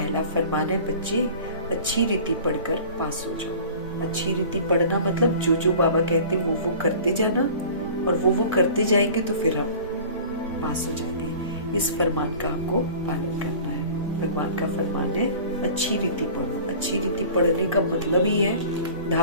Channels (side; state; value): both; inverted; correlation -0.43